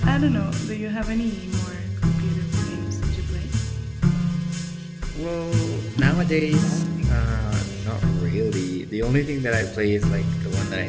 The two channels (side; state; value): both; identical; correlation 1.00